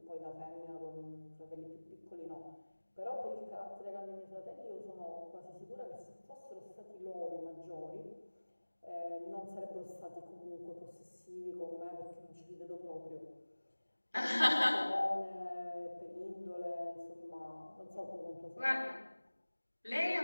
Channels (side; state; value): both; inverted; correlation -1.00